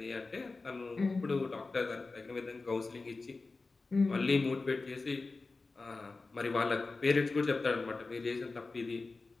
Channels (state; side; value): quieter; right; 3.7 dB